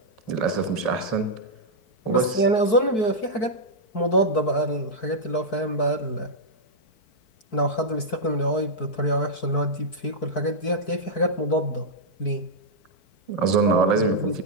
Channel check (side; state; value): right; late; 4.6 ms